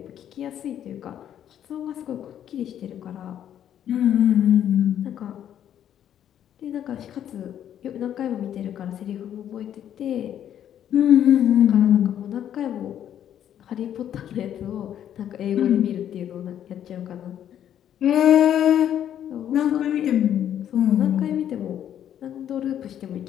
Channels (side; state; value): right; quieter; 10.3 dB